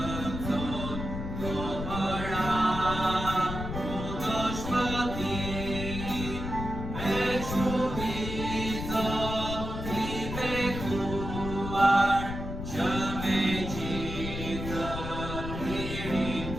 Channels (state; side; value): noise; left; rumble, 6 dB below the sound